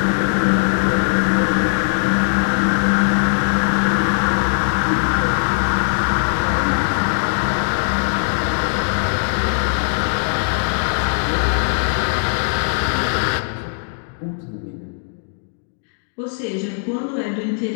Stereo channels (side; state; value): right; silent; digital silence